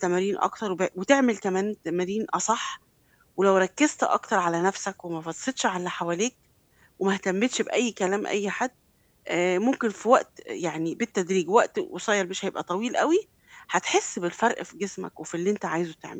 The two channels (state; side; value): identical; both; correlation 1.00